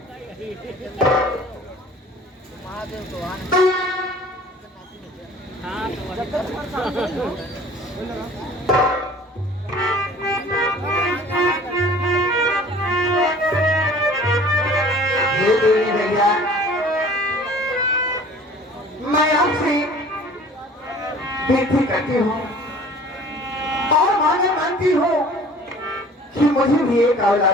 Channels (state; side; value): normal; both; correlation 0.48